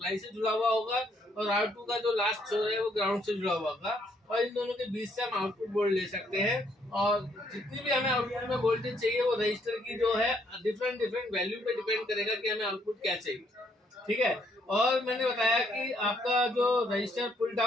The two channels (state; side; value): normal; both; correlation 0.70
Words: से जुड़ा हुआ होगा, और R2 का जो लास्ट छोर है वो ग्राउंड से जुड़ा हुआ होगा, और इन दोनों के बीच से हम आउटपुट वोल्ट ले सकते हैं। और जितनी भी हमें आउटपुट में वोल्टेज चाहिए वो रजिस्टर की जो है डिफरेंट वैल्यू पे डिपेंड करेगा कि हमें आउटपुट क्या चाहिए। ठीक है, और मैंने बताया कि आपका जो रजिस्टर पुल